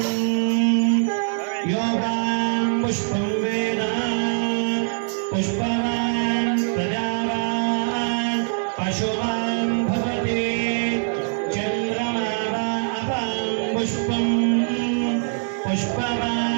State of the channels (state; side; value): silent; left; digital silence